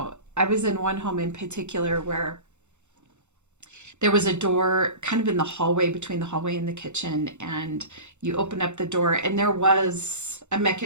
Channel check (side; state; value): left; late; 0.83 ms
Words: was in one home in particular where there was a door kind of in the hallway, between the hallway and the kitchen, and you open up the door and there was a